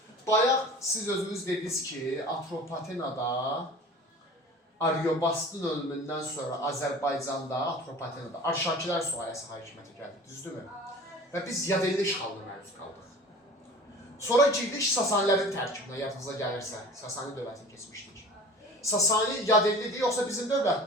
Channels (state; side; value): normal; both; correlation 0.41